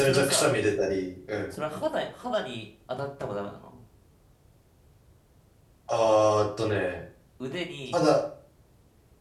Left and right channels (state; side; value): identical; both; correlation 1.00